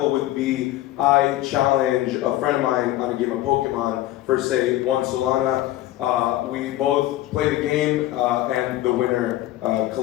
would be I challenge a friend of mine on a game of Pokemon for say one Solana. We both play the game and the winner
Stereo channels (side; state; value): right; quieter; 15.2 dB